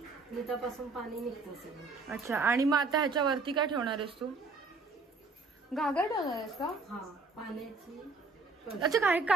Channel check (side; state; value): left; quieter; 3.9 dB